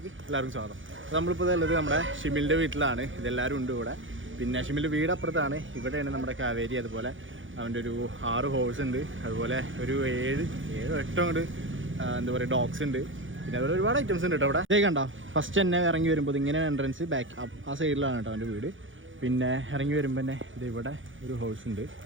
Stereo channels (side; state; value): left; late; 0.57 ms